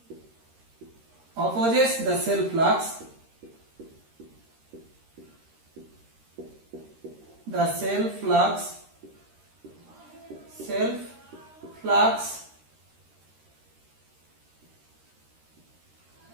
opposes the cell flux, the cell flux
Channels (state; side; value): late; left; 13 ms